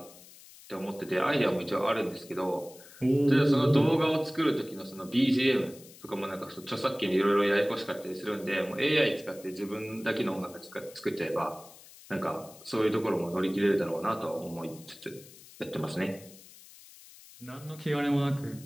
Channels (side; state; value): left; noise; hiss, 20 dB below the sound